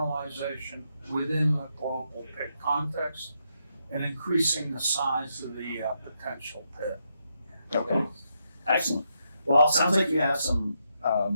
within the global pit context and increasing the size of the potential pit. Okay. Excellent. Well, it sounds like you have some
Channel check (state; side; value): inverted; both; correlation -0.81